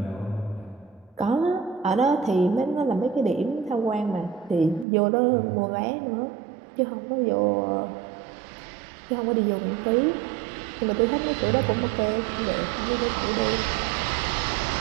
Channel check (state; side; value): drops out; left; at 4.9 s